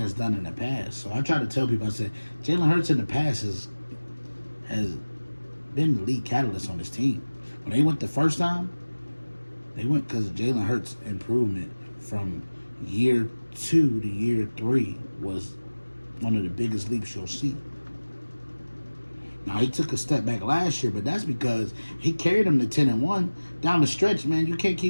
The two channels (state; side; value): inverted; both; correlation -1.00